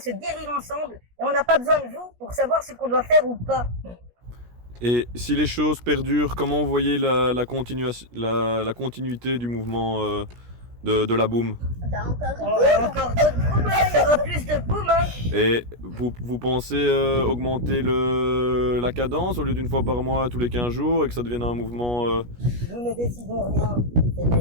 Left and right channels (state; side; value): late; left; 17 ms